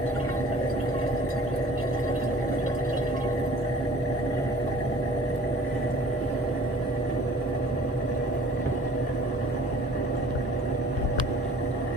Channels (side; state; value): both; normal; correlation 0.49